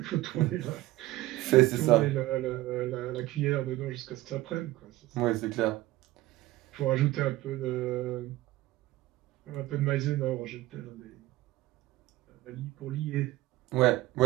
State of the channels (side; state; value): left; quieter; 17.1 dB